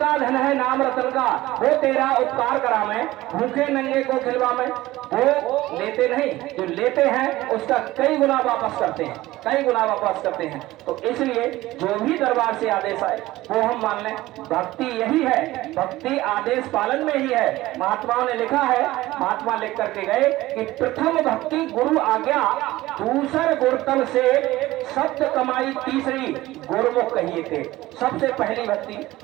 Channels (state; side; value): quieter; left; 17.4 dB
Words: धन है नाम रतन का। वो तेरा उपकार करा मैं, भूखे नंगे को खिलवा मैं। वो लेते नहीं, जो लेते हैं उसका कई गुना वापस करते हैं, कई गुना वापस करते हैं। तो इसलिए जो भी दरबार से आदेश आए वो हम मान लें। भक्ति यही है, भक्ति आदेश पालन में ही है। महात्माओं ने लिखा है, महात्मा लिख करके गए कि प्रथम भक्ति गुरु आज्ञा, दूसर गुरुतल से शब्द कमाई, तीसरी गुरुमुख कहिए थे। सबसे पहली भक्ति